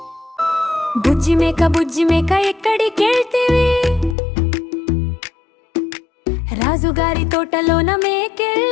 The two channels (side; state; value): right; drops out; at 4.2 s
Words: బుజ్జి మేక ఎక్కడికెళ్తివి? రాజుగారి తోటలోన